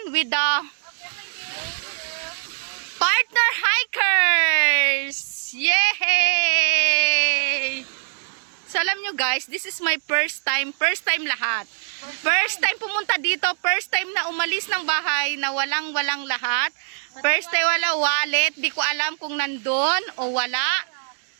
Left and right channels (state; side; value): silent; left; digital silence